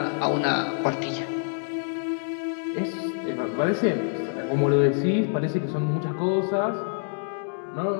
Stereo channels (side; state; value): right; silent; digital silence